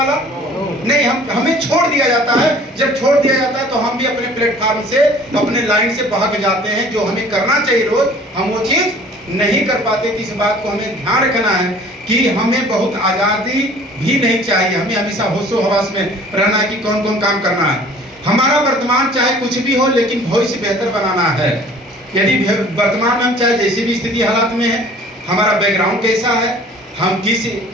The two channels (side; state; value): both; normal; correlation 0.50